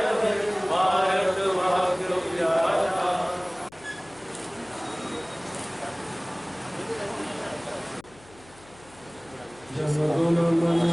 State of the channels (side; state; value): left; noise; hum, 24 dB below the sound